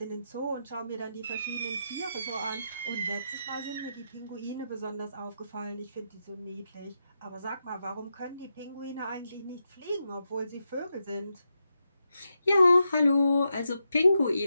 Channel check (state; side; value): inverted; both; correlation -0.86